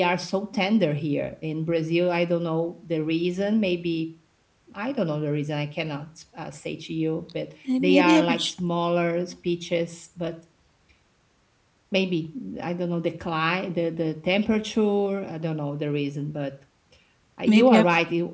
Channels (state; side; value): identical; both; correlation 1.00